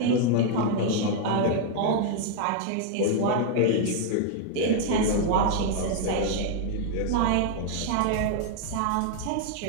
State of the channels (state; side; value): different; both; correlation 0.00